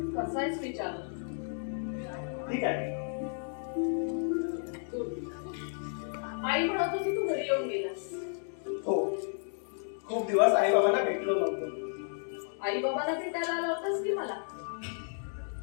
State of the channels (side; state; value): right; silent; digital silence